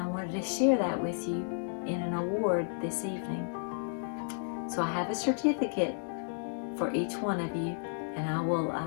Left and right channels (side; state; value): right; silent; digital silence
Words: wanted to share that with you in an award this evening. So I have a certificate for each one of you, and I will